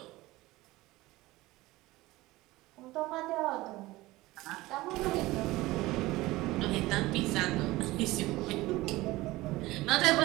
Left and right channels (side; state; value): left; quieter; 19.1 dB